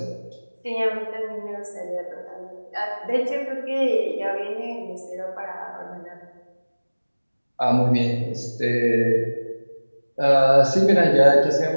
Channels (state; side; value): inverted; both; correlation -1.00